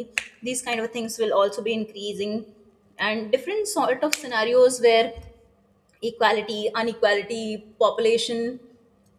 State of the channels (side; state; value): both; identical; correlation 1.00